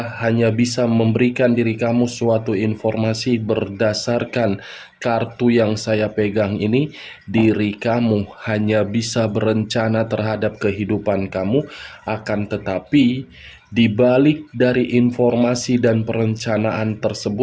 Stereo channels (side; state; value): both; identical; correlation 1.00